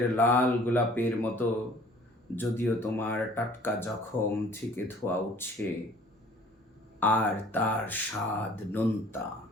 লাল গোলাপের মতো। যদিও তোমার টাটকা জখম থেকে ধোঁয়া উঠছে, আর তার স্বাদ নোনতা,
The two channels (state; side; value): normal; both; correlation 0.52